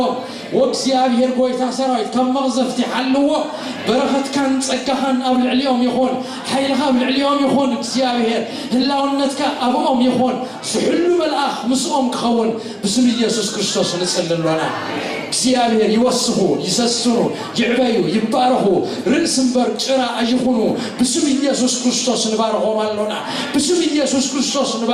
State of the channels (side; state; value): both; identical; correlation 1.00